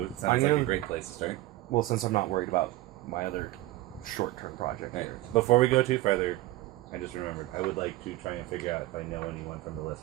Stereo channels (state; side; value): quieter; left; 17.5 dB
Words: I'm sounds like gonna- a great place to start. Well, since I'm not worried about my other short-term project Right. here. Before we go too further, I just remembered I would like to try and figure out if I know anyone from the